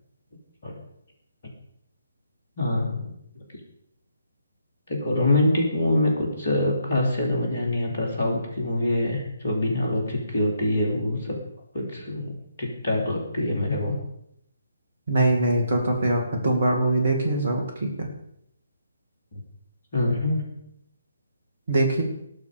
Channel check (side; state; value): both; inverted; correlation -0.74